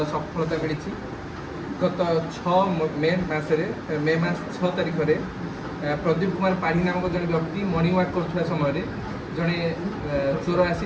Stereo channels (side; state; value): both; identical; correlation 1.00